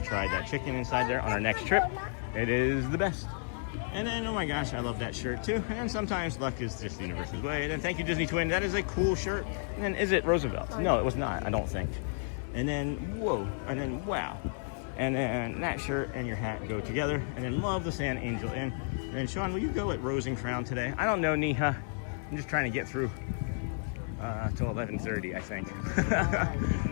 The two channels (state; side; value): silent; right; digital silence